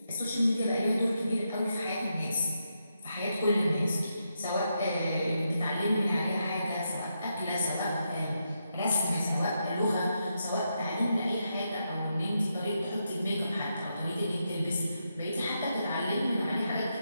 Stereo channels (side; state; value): both; inverted; correlation -0.83